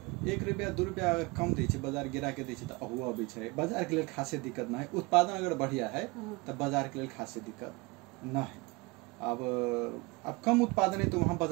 1 रुपया 2 रुपया कम दै छै बाजार गिरा के दै छै त अहुआ अबै छै। बाजार के लिए खासे दिक्कत ना है, उत्पादन अगर बढ़िया है त बाजार के लिए खासे दिक्कत ना है। अब कम उत्पादन है तो वहाँ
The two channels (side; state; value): left; quieter; 25.4 dB